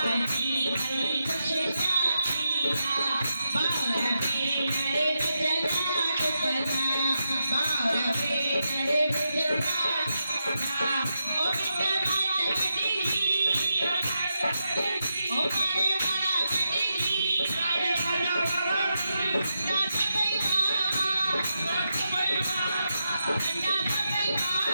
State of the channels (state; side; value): inverted; both; correlation -0.86